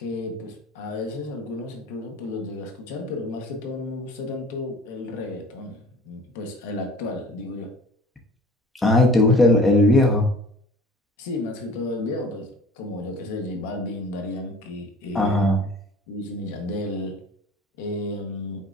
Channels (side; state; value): both; normal; correlation 0.46